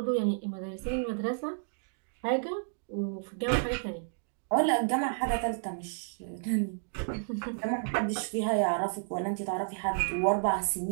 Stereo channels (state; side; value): silent; left; digital silence